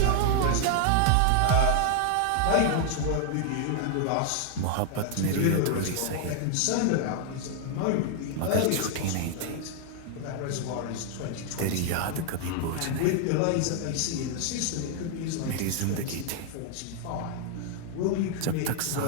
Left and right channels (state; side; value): different; both; correlation 0.00